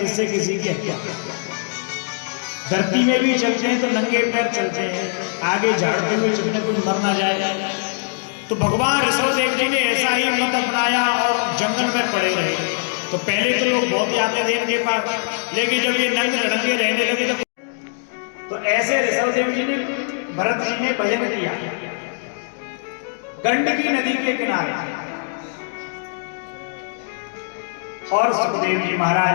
किसी की हत्या। धरती में भी चलते हैं तो नंगे पैर चलते हैं, आगे झाड़ते हुए चलने कोई मर ना जाए। तो भगवान ऋषभ देव जी ने ऐसा ही मत अपनाया और जंगल में पड़े रहे। तो पहले तो लोग बहुत आते थे इनके पास, लेकिन जब ये नंगे लड़ंगे रहने लगे तो ऐसे ऋषभ देव जी ने भरत जी ने भजन किया गंडकी नदी के किनारे। और सुखदेव जी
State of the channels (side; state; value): right; silent; digital silence